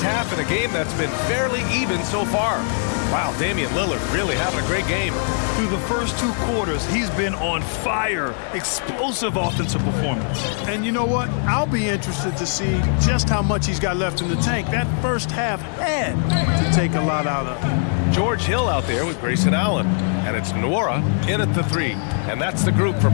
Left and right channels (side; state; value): right; silent; 57 dB below the other